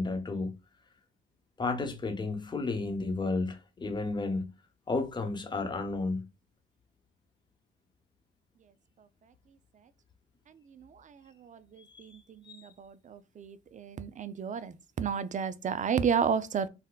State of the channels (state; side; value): normal; both; correlation 0.45